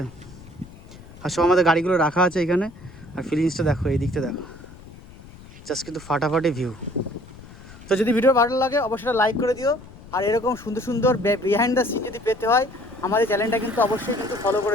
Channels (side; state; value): left; noise; rumble, 19 dB below the sound